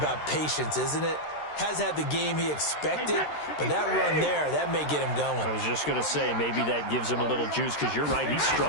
patience, isn't it? Has had the game he expected, but that run there, that may get him going. I was just going to say, maybe that gives him a little juice, because you're right, he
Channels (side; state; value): right; late; 13 ms